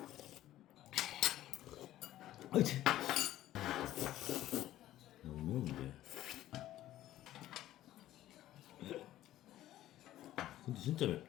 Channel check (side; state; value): right; quieter; 13.9 dB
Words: 아이치. 너무 매운데. 근데 진짜